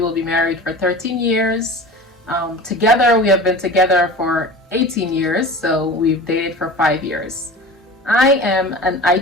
be married for 13 years. Together, we have been together for 18 years, so we've dated for 5 years. I am an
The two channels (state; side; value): normal; both; correlation 0.36